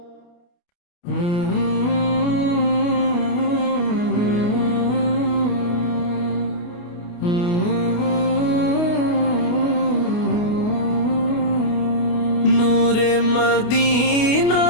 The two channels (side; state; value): right; late; 28 ms